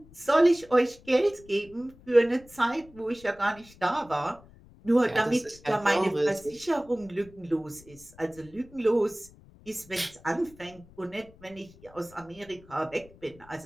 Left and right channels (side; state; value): left; noise; rumble, 24 dB below the sound